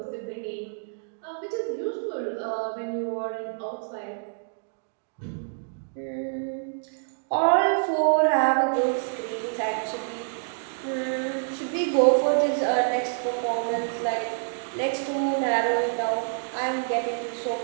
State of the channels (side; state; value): left; silent; digital silence